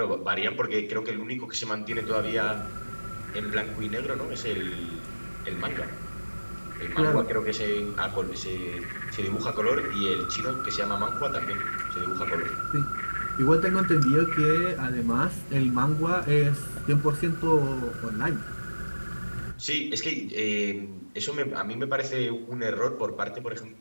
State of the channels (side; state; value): both; inverted; correlation -1.00